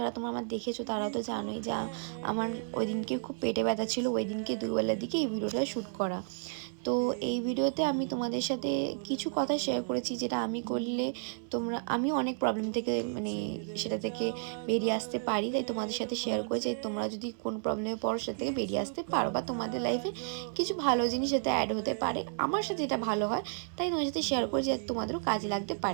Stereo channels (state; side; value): silent; left; 56 dB below the other